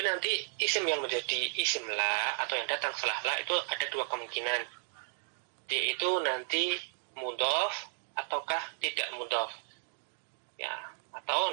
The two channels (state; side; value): silent; left; digital silence